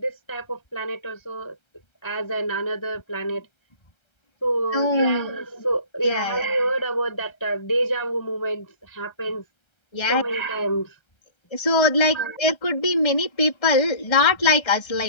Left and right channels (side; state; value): right; late; 1.3 ms